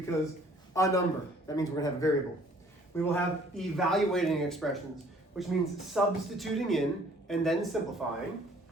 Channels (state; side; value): normal; both; correlation 0.57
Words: a number. That means we're going to have a variable. We will have evaluating expressions, which means substituting in and then simplifying.